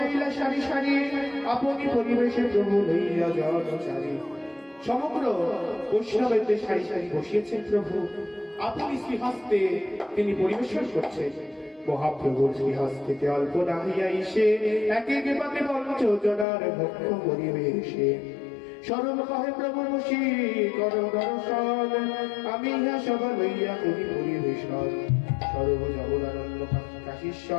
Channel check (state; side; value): drops out; right; at 16.4 s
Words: সারি সারি, আপনি পরিবেশে প্রভু লইয়া জনচারী। সমগ্র বৈষ্ণবের সারি সারি বসিয়েছেন প্রভু, আপনি শ্রীহস্তে তিনি পরিবেশন করছেন। মহাপ্রভুর শ্রীহস্তে অল্প না হইয়া এসে এক এক পাতে পঞ্চজনার ভক্ষ পরিবেশে। সরল কহে প্রভু বসি কর দর্শন, আমি ইহা সব লইয়া করি পরিবেশন। সর্ব জগদানন্দ